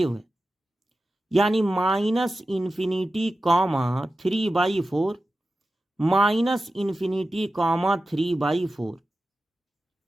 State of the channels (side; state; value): both; normal; correlation 0.93